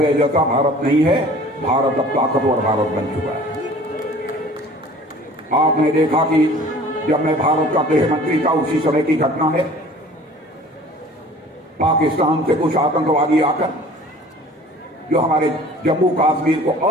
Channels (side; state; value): both; normal; correlation 0.47